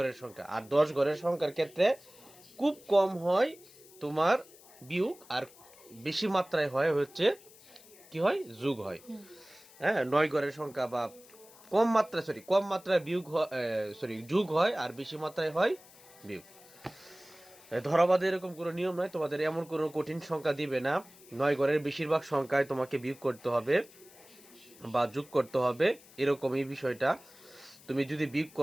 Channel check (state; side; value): noise; left; hiss, 23 dB below the sound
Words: সংখ্যা আর 10 ঘরের সংখ্যার ক্ষেত্রে খুব কম হয় তোমার বিয়োগ আর বেশি মাত্রায় হয় হচ্ছে কি হয় যোগ হয় হ্যাঁ 9 ঘরের সংখ্যা বা কম মাত্রায় বিয়োগ যোগ হয় আর বেশি মাত্রায় হয় বিয়োগ ধরাবাঁধে এরকম কোনো নিয়ম নয় তোমাদের এমন কোনো কঠিন সংখ্যা দিবে না 9 ঘরের বেশিরভাগ সংখ্যায় তোমাকে বিয়োগ করতে হবে বা যোগ করতে হবে এরকম এই বিষয়টা তুমি যদি বিয়োগ